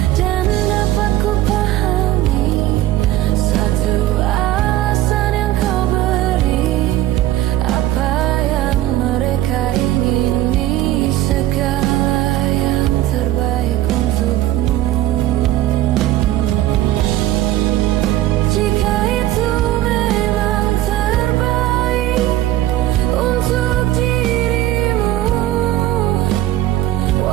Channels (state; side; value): quieter; left; 14.5 dB